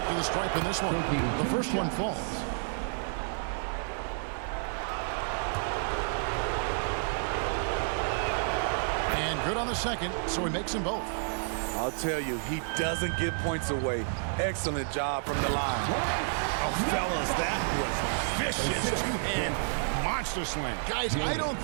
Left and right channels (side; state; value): left; silent; 58 dB below the other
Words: to the stripe in this one. The first one falls. And good on the second, so he makes them both. I'll tell you, he doesn't give points away. Excellent job from the line. Oh, fellas, that was vicious two-hand monster slam. Guys, I don't